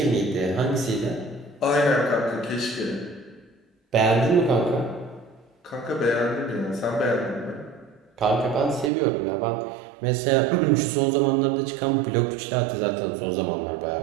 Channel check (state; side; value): drops out; left; at 8.9 s